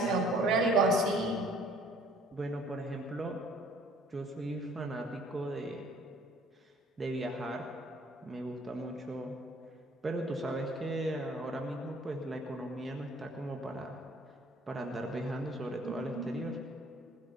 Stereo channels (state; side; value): normal; both; correlation 0.56